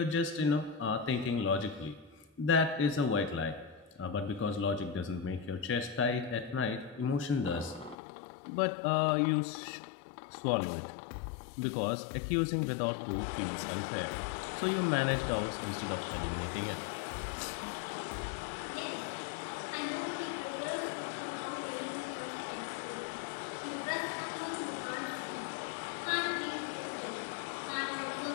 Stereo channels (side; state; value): right; drops out; at 8.0 s